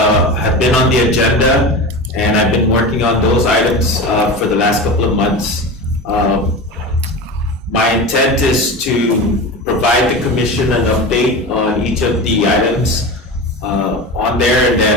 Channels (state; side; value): normal; both; correlation 0.27